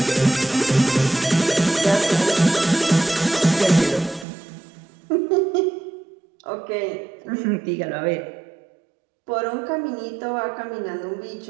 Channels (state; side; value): drops out; left; at 4.2 s